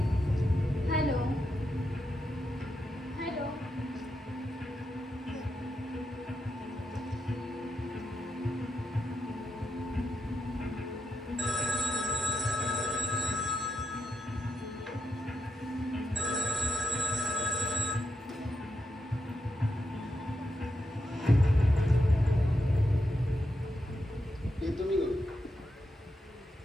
hello hello. हे तुम्ही करू.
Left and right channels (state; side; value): normal; both; correlation 0.85